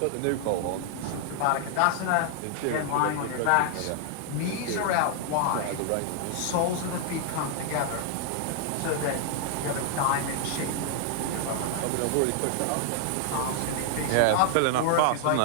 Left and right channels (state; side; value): different; both; correlation 0.00